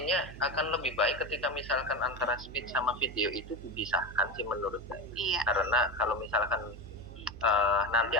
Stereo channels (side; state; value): right; noise; hum, 14 dB below the sound